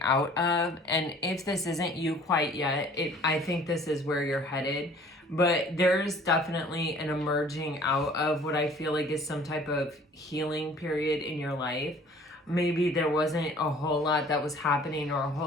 out of, and if this isn't you quite yet, I think this is where you're headed, but there's definitely an emerging out of what I feel like is some type of healing period in your life. Maybe there wasn't a whole lot that was happening or a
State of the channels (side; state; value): both; normal; correlation 0.52